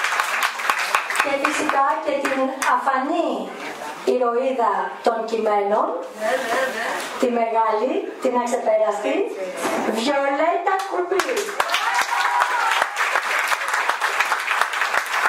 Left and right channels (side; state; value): both; identical; correlation 1.00